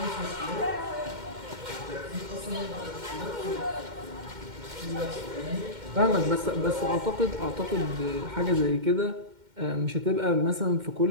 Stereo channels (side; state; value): left; late; 2.1 ms